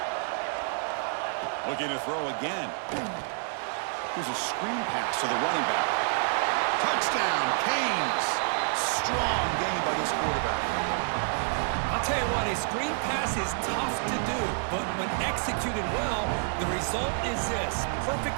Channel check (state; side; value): silent; left; 59 dB below the other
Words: Looking to throw again. Here's a screen pass to the running back. Touchdown, Canes. Strong game by this quarterback. I'll tell you what, a screen pass is tough to do, but when executed well, the result is this.